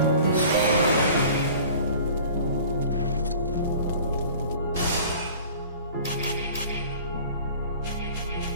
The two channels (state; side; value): inverted; both; correlation -0.45